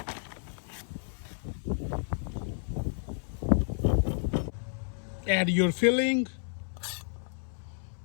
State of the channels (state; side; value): silent; right; 57 dB below the other